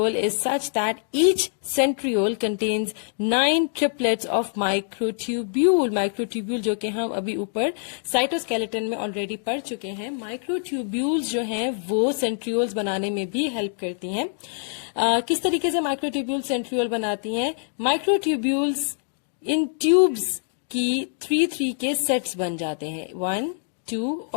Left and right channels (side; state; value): right; silent; digital silence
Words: is such that each centriole contains 9 triplets of microtubule. Microtubule जो कि हम अभी ऊपर साइटोस्केलेटन में ऑलरेडी पढ़ चुके हैं. माइक्रोट्यूब्यूल्स जो हैं वो सेंट्रियोल्स बनाने में भी हेल्प करती हैं. किस तरीके से माइक्रोट्यूब्यूल सेंट्रियोल बनाती हैं? माइक्रोट्यूब्यूल्स इन ट्यूब्स की 3-3 के सेट्स बन जाते हैं, 1, 2